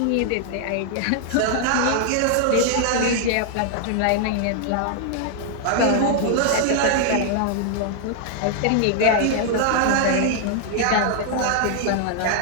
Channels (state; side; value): different; both; correlation -0.01